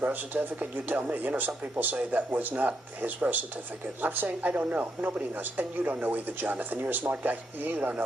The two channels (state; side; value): normal; both; correlation 0.79